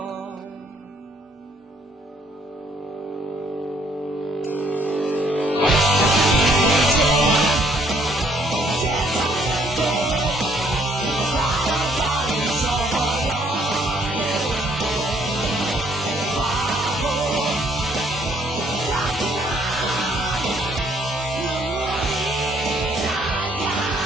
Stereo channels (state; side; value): normal; both; correlation 0.65